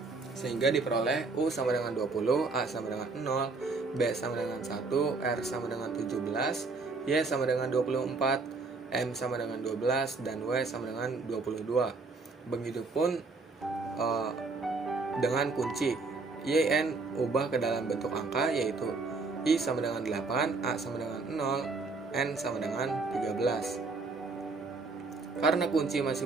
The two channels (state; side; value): quieter; left; 3.9 dB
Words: sehingga diperoleh U sama dengan 20, A sama dengan 0, B sama dengan 1, R sama dengan 17, Y sama dengan 24, M sama dengan 12, dan W sama dengan 22. Begitupun dengan kunci YN ubah ke dalam bentuk angka, yaitu I sama dengan 8, A sama dengan 0, N sama dengan 13. Karena kunci